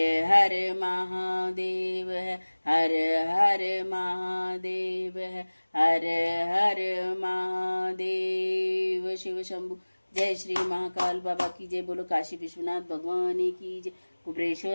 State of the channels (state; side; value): inverted; both; correlation -1.00